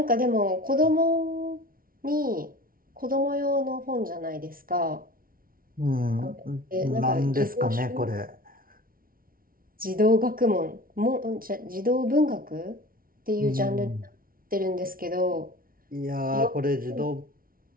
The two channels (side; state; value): left; late; 0.42 ms